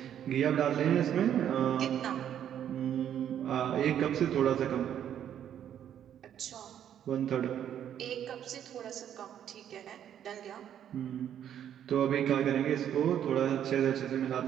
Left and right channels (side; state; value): left; quieter; 9.9 dB